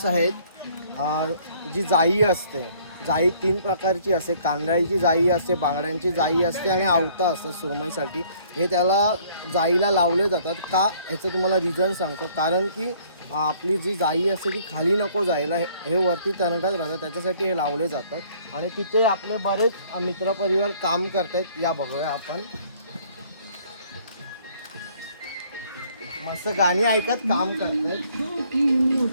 आहेत, जी जाई असते, जाई तीन प्रकारची असते। कांदळीची जाई असते, बांगड्यांची जाई असते आणि आवता असतं सुरमईसाठी। हे त्याला जाईला लावले जातात का याचं तुम्हाला रिझन सांगतो। कारण की आपली जी जाई असते ती खाली नको जायला, हे वरती तरंगत राहतात, त्याच्यासाठी हे लावले जातात। आणि तिथे आपले बरेच मित्रपरिवार काम करतात, या बघूया आपण। मस्त गाणी ऐकत काम करतात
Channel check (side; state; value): both; inverted; correlation -0.60